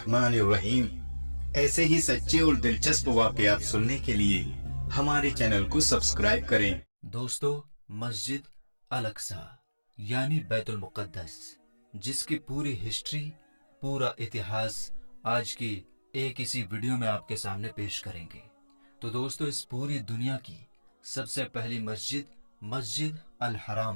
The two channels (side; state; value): both; inverted; correlation -1.00